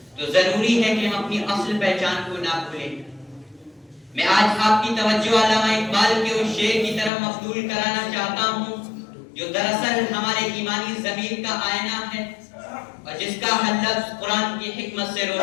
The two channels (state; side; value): drops out; right; at 7.1 s